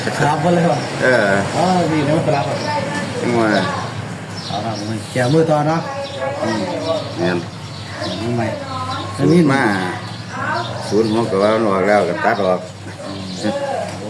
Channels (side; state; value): both; identical; correlation 1.00